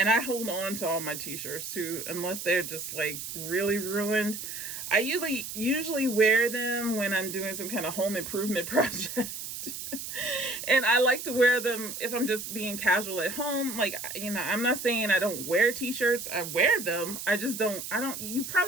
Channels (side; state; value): right; noise; hiss, 7 dB below the sound